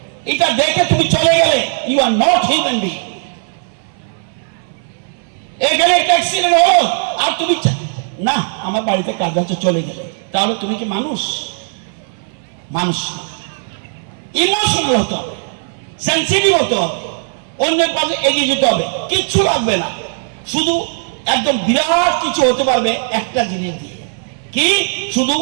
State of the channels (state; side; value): silent; left; 61 dB below the other